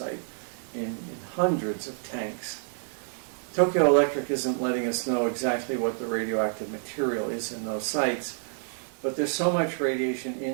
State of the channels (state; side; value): silent; left; digital silence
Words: in hundreds of tanks. Tokyo Electric isn't letting us know exactly what the radioactive material is in those sites, but there's so much radiation